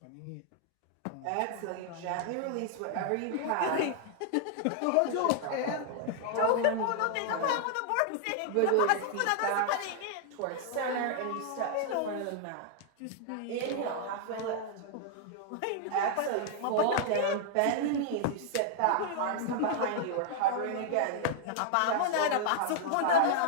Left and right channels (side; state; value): both; different; correlation 0.00